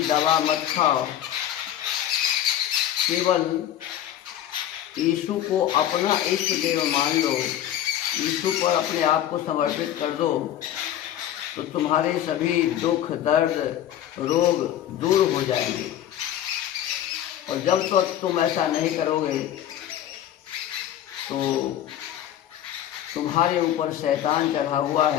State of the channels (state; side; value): quieter; right; 11.5 dB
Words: दवा मत खाओ, केवल यीशु को अपना इष्ट देव मान लो, यीशु पर अपने आप को समर्पित कर दो, तो तुम्हारे सभी दुख दर्द रोग दूर हो जाएंगे। और जब तक तुम ऐसा नहीं करोगे तो तुम्हारे ऊपर शैतान चढ़ा हुआ